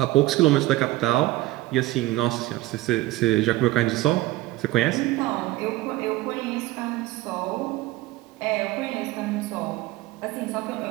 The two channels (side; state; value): left; quieter; 17.9 dB